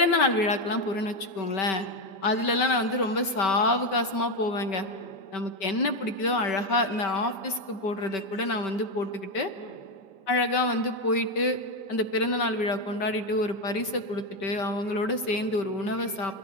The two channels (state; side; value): late; right; 5.2 ms